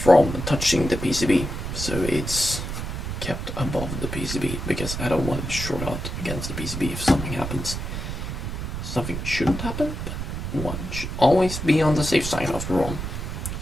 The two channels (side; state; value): right; noise; rumble, 5 dB below the sound